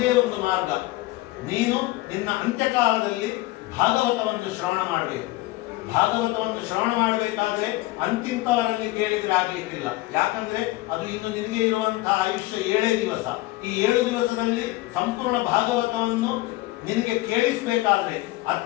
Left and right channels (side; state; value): right; quieter; 18.7 dB